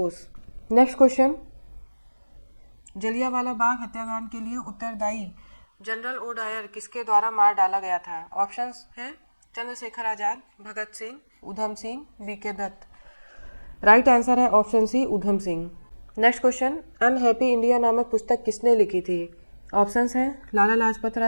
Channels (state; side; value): inverted; both; correlation -1.00